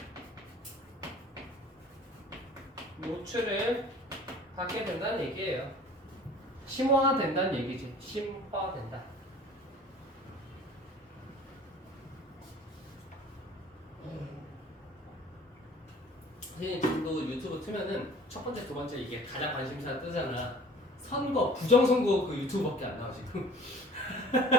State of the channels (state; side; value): normal; both; correlation 0.47